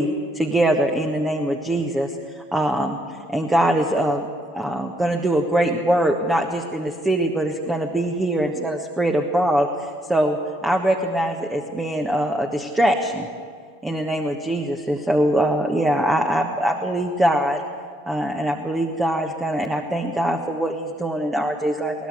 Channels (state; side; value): normal; both; correlation 0.74